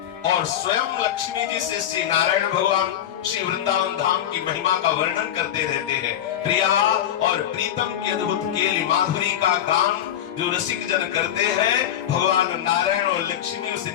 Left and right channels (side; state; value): right; quieter; 10.7 dB